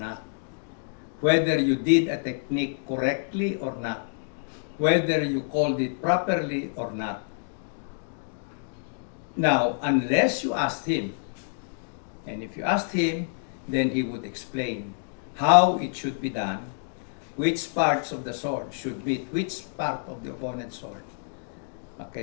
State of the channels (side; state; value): right; silent; digital silence